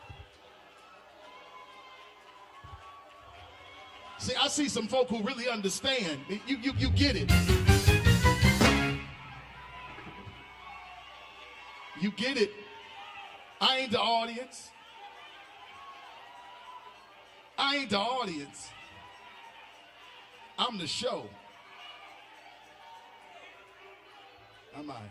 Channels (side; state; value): both; identical; correlation 1.00